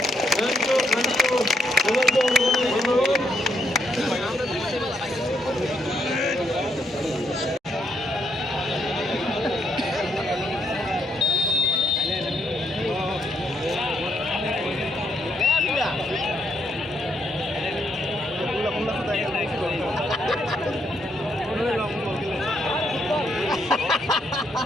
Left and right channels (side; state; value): both; normal; correlation 0.75